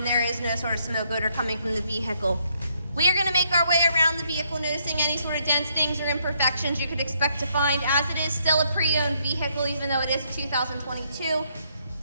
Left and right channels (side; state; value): both; inverted; correlation -0.73